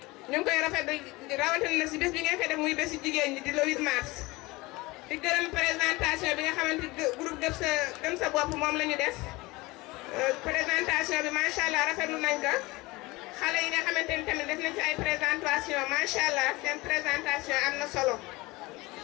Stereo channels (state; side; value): quieter; right; 22.2 dB